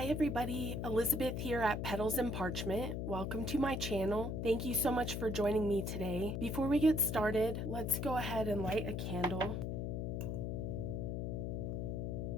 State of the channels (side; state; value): left; noise; hum, 2 dB below the sound